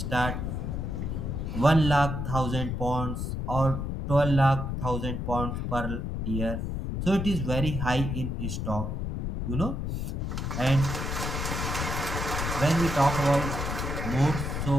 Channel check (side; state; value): left; noise; rumble, 3 dB below the sound